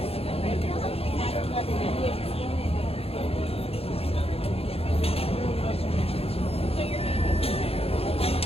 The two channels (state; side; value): late; right; 0.28 ms